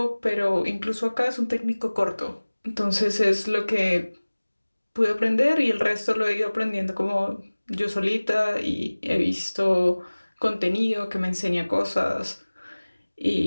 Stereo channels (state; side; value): inverted; both; correlation -1.00